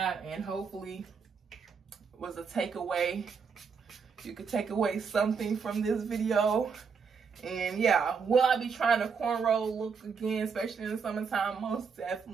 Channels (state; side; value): quieter; left; 5.8 dB